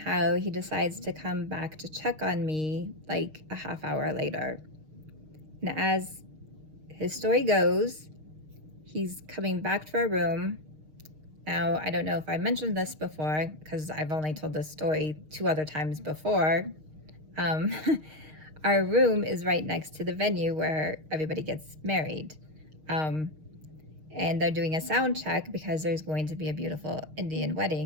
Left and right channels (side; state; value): left; late; 6.4 ms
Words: he decides to come back to check on me like a half hour later. And as his story goes, he's coming back to our room. Now, I don't know if I mentioned this before because I've only told this story 2 other times before. Our room is right next to the venue where everybody gets married. And they're doing a sound check because there's going to be a beautiful Indian